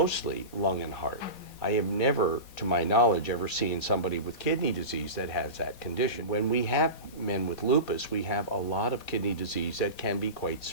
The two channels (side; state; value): right; late; 4.1 ms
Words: lung and heart. I have never, to my knowledge, ever seen somebody with kidney disease that has that condition. When we have men with lupus, we have a lot of kidney disease that can be quite